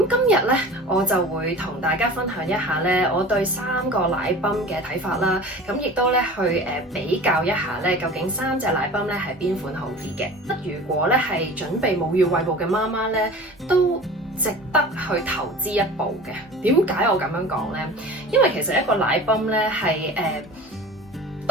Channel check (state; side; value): normal; both; correlation 0.38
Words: 今日咧，我就會同大家分享一下咧，我對3個奶泵嘅睇法啦。咁亦都咧去比較一下咧，究竟3隻奶泵咧係邊款好啲嘅。如果咧係準備母乳餵哺嘅媽媽咧，都值得去投資一步嘅。點解我咁樣講呢？因為其實一個奶泵咧係